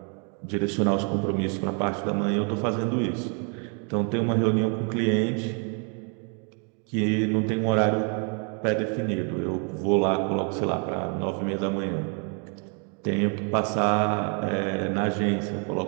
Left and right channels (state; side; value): quieter; left; 38.0 dB